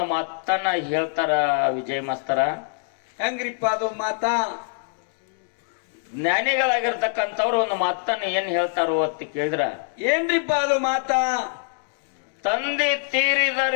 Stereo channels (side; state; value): right; silent; digital silence